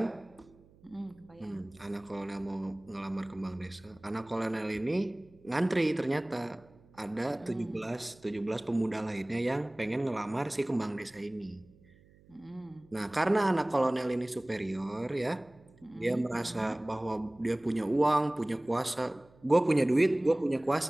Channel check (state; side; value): noise; right; hum, 27 dB below the sound